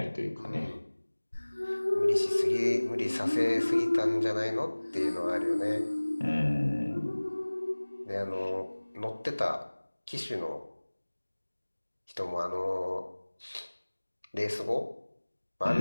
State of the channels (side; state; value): both; inverted; correlation -1.00